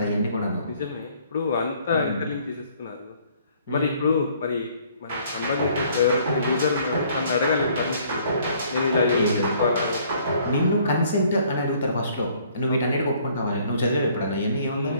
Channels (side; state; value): both; inverted; correlation -0.60